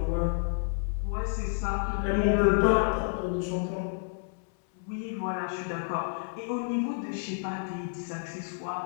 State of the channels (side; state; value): right; silent; 58 dB below the other